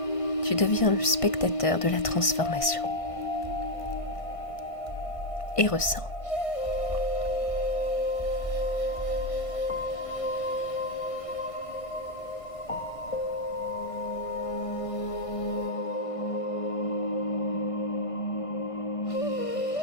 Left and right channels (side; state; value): right; late; 1.5 ms